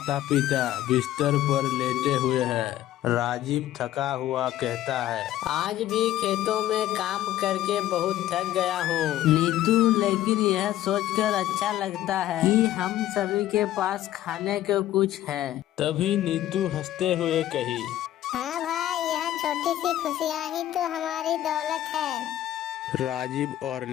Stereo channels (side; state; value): right; quieter; 13.4 dB